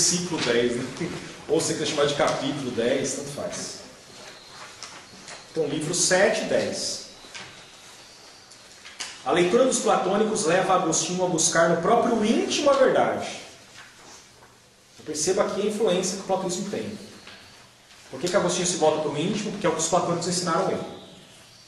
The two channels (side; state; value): both; identical; correlation 1.00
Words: 10. Né? Ou você quer chamar de capítulo 10, tanto faz. Então, livro 7 e 10. A leitura dos platônicos leva Agostinho a buscar no próprio íntimo a verdade. Perceba aqui a influência que o platonismo tem. Por que Agostinho se volta para o íntimo? Porque é o que os platônicos ensinaram ele.